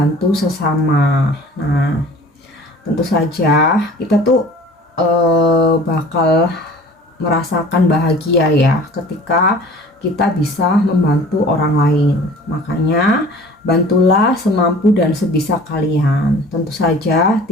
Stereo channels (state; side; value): normal; both; correlation 0.45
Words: sesama. Nah, tentu saja kita tuh bakal merasakan bahagia ya ketika kita bisa membantu orang lain. Makanya bantulah semampu dan sebisa kalian. Tentu saja